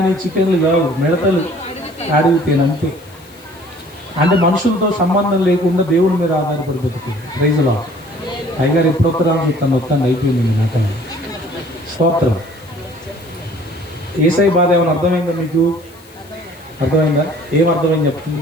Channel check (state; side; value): noise; left; hiss, 26 dB below the sound